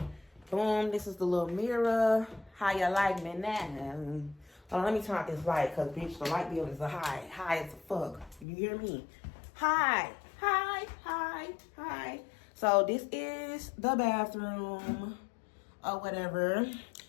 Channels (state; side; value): drops out; right; at 8.5 s